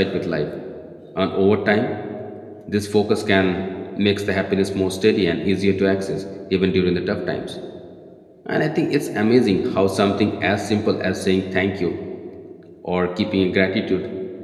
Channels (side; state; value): both; identical; correlation 1.00